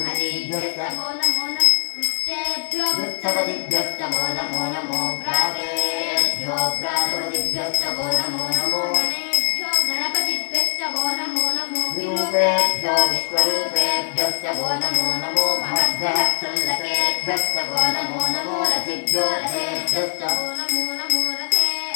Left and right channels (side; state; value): right; silent; digital silence